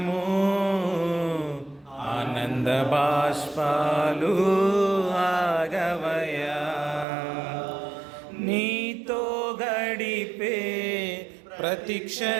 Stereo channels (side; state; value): left; drops out; at 7.1 s